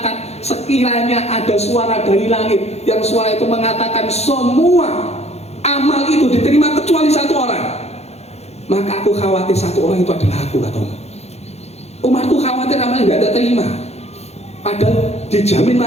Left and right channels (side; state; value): right; late; 0.31 ms